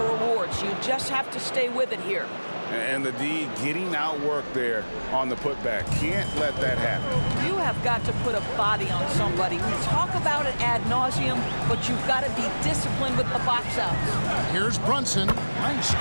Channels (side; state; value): both; inverted; correlation -1.00